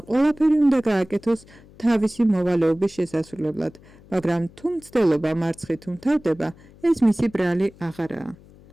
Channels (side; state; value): left; noise; hum, 24 dB below the sound